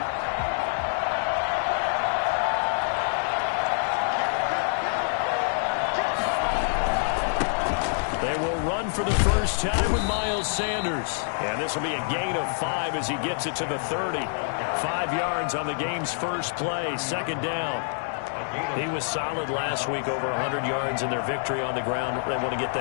For the first time with Miles Sanders. And this will be a gain of 5 as he gets it to the 30. 5 yards on the game's first play, second down. He was solid last week, over 100 yards in their victory on the ground. They want to get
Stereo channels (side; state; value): right; silent; digital silence